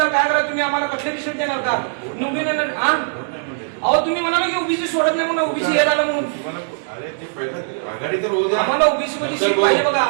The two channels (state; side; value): silent; left; 66 dB below the other